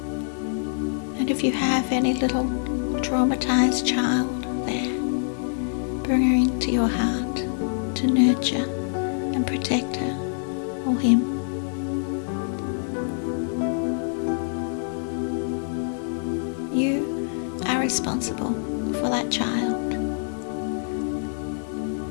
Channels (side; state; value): right; silent; digital silence